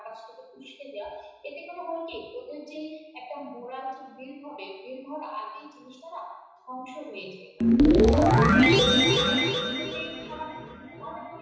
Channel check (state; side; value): identical; both; correlation 1.00